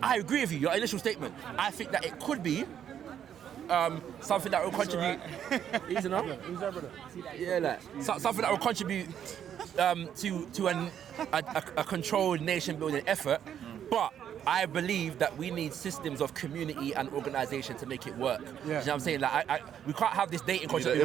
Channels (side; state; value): left; quieter; 9.4 dB